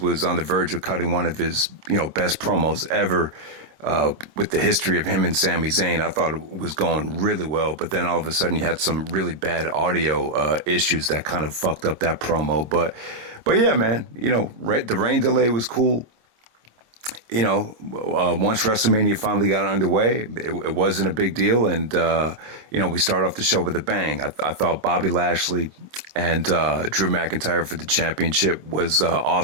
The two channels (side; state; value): left; late; 26 ms